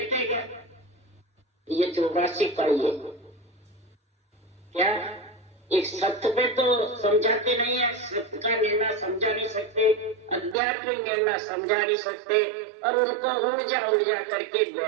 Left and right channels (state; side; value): drops out; left; at 10.6 s